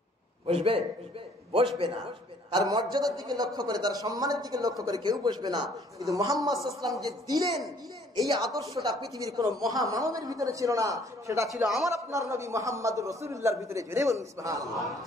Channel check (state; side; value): normal; both; correlation 0.59